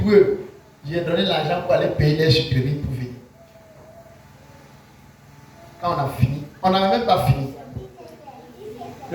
eux. J'ai donné l'argent pour aller payer les supérieurs pour venir. Quand on a fini, on n'avait même pas fini.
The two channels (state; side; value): identical; both; correlation 1.00